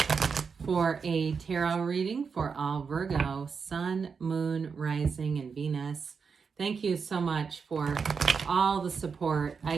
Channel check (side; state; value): left; quieter; 5.7 dB